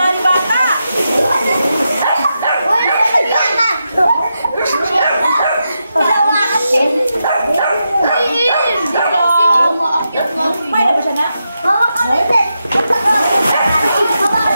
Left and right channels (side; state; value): both; inverted; correlation -0.86